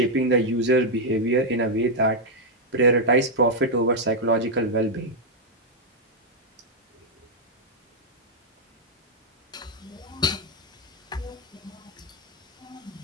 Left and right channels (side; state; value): both; normal; correlation -0.02